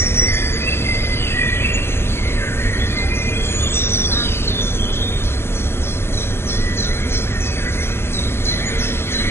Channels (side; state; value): right; late; 0.12 ms